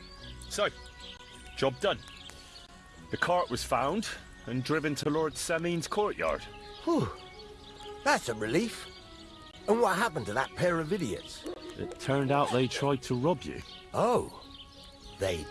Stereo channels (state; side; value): identical; both; correlation 1.00